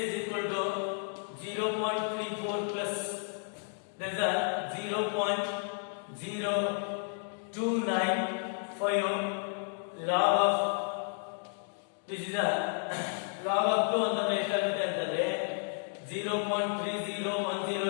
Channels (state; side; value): silent; right; 56 dB below the other